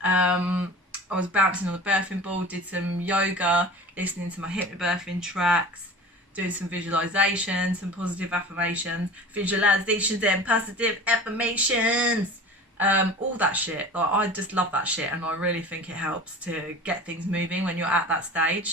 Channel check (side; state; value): both; normal; correlation 0.37